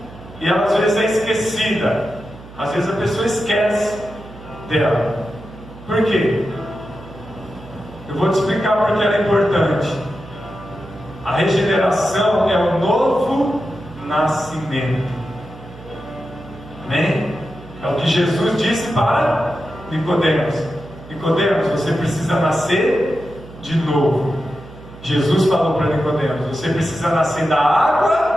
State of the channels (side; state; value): right; noise; hum, 18 dB below the sound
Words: E ela às vezes é esquecida. Às vezes a pessoa esquece dela. Por quê? Eu vou te explicar porque ela é importante. A regeneração é o novo nascimento. Amém? É o que Jesus disse para Nicodemos. Nicodemos, você precisa nascer de novo. Jesus falou para Nicodemos: você precisa nascer da